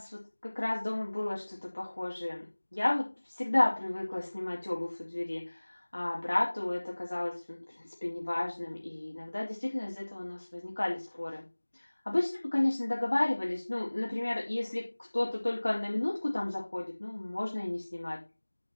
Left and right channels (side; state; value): both; inverted; correlation -1.00